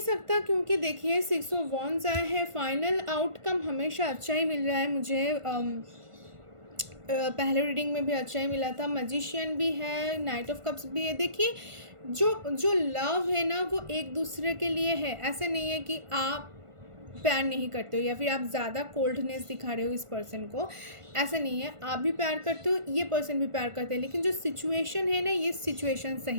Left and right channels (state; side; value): late; left; 1.5 ms